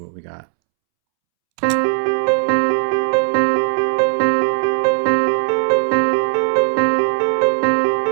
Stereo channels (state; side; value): silent; left; 68 dB below the other